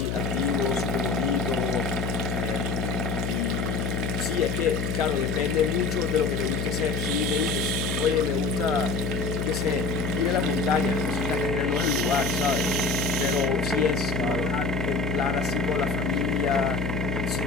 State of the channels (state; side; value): noise; left; hum, 1 dB below the sound